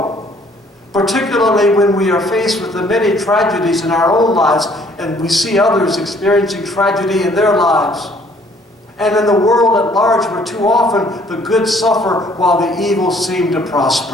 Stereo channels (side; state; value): both; normal; correlation 0.60